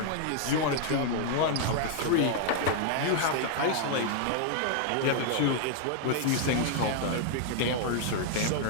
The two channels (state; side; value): different; both; correlation -0.01